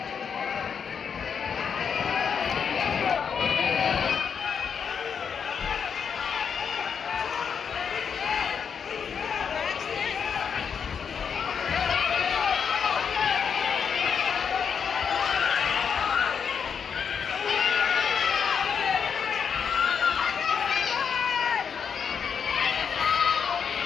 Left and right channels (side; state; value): right; quieter; 6.8 dB